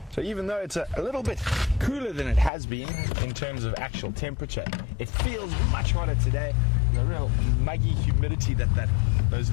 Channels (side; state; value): right; drops out; at 2.5 s